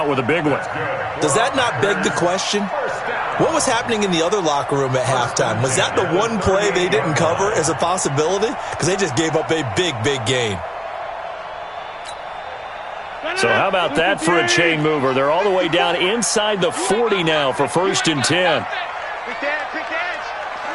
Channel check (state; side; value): identical; both; correlation 1.00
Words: with a big one. Does that not beg the question? What was happening in the other locker room at halftime? Was that the one play they didn't cover as a possibility? Because they just gave up a big gain. So how about that for a chain mover? They're all the way down inside the 40 now for 1st and 10. Quick edge.